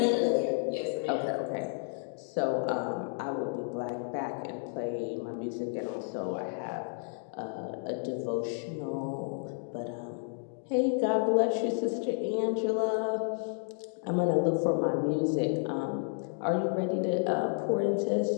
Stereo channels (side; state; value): right; silent; 57 dB below the other